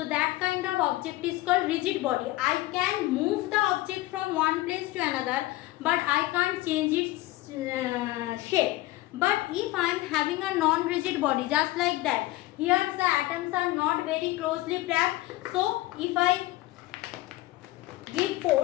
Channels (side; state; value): right; quieter; 17.9 dB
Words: that kind of object is called rigid body. I can move the object from one place to another, but I can't change its shape. But if I am having a non-rigid body, just like that, here the atoms are not very closely packed, so if I give